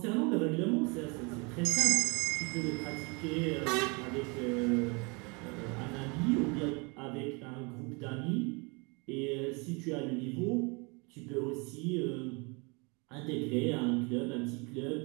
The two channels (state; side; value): quieter; left; 30.3 dB